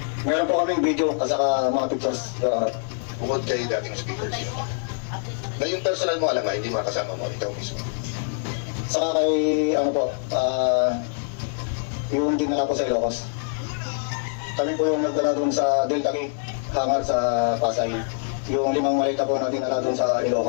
Meron po kaming video at saka mga pictures, Your Honor. Bukod kay dating speakers. Na yung personal mo alam nga, hindi makasama mo, ikaw mismo. Saka kay, yung dinala ko sa Ilocos. Kami po yung nagdala doon sa Delta Gate, hangar sa Pasay. Yung 5 maleta po na dinala doon sa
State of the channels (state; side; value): silent; right; 62 dB below the other